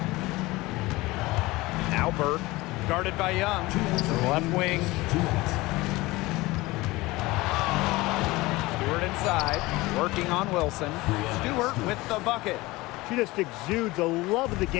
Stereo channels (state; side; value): quieter; right; 20.6 dB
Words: Now Burke, guarded by Young. Left wing. Stewart inside, working on Wilson. Stewart with the bucket. She just exudes a love of the